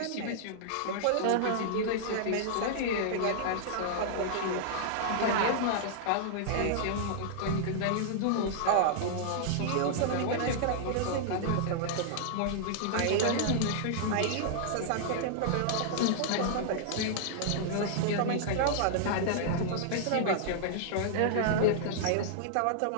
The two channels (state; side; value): different; both; correlation -0.01